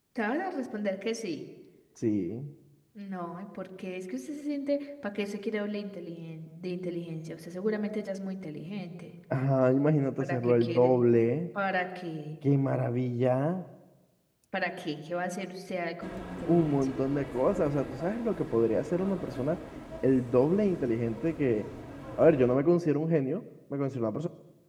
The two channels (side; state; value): both; identical; correlation 1.00